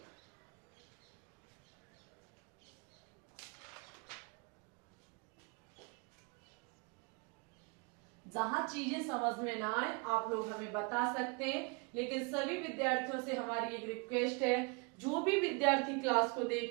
जहां चीजें समझ में ना आए आप लोग हमें बता सकते हैं, लेकिन सभी विद्यार्थियों से हमारी एक रिक्वेस्ट है, जो भी विद्यार्थी क्लास को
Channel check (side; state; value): left; quieter; 32.4 dB